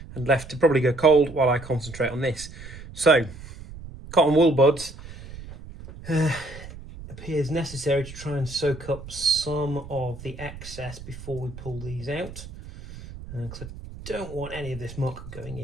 and left to probably go cold while I concentrate on this. So, cotton wool buds appears necessary to try and soak up some of the excess before we pull these out, because I don't want any of this muck going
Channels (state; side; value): noise; right; rumble, 14 dB below the sound